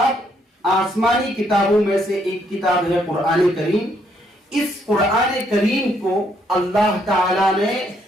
آسمانی کتابوں میں سے ایک کتاب ہے قرآن کریم۔ اس قرآن کریم کو اللہ تعالی نے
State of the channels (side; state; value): both; normal; correlation 0.71